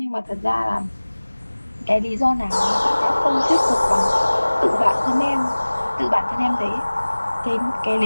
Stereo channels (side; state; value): both; inverted; correlation -1.00